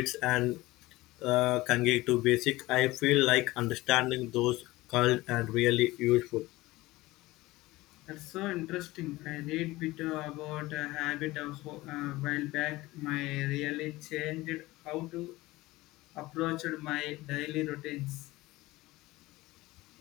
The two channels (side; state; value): right; quieter; 19.3 dB